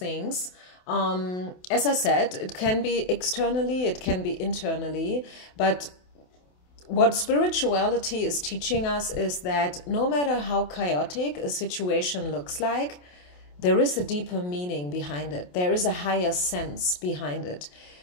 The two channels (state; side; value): late; right; 28 ms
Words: As I said, it can be externally, it can be internally, but what spirituality is teaching us is that no matter how chaotic a situation looks like, there is a deeper meaning behind it. There is a higher sense behind it.